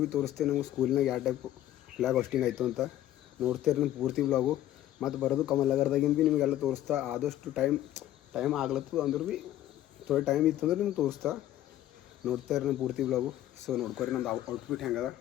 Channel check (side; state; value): right; quieter; 13.1 dB